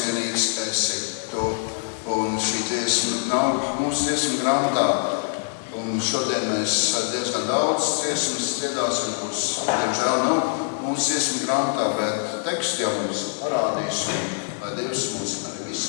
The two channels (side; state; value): right; silent; digital silence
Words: esi tu, un šī dziesma nav mūsu dziesmu grāmatā. Un šodien mēs diezgan daudz dziesmas dziedāsim, kuras, diemžēl, nav mūsu dziesmu grāmatā, bet tekstu jau mums parādīs, un lai Dievs mūs arī